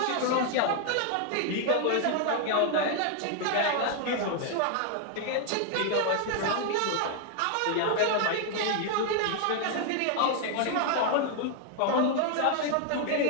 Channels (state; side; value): different; both; correlation 0.00